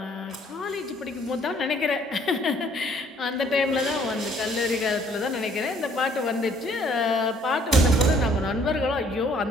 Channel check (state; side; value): normal; both; correlation 0.61